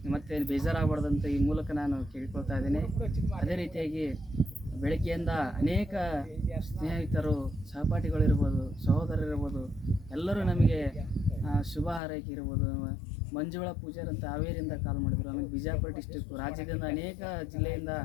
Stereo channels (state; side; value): drops out; right; at 12.0 s